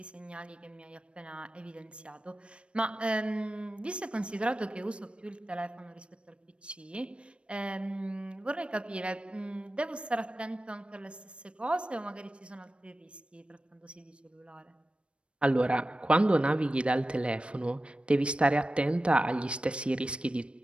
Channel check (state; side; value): late; left; 0.059 ms